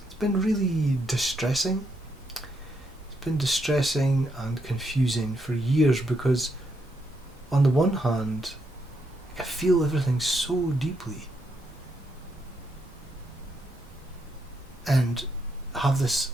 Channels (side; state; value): both; normal; correlation 0.78